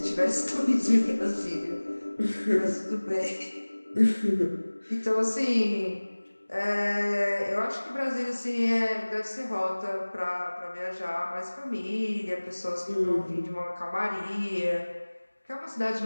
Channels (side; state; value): both; inverted; correlation -1.00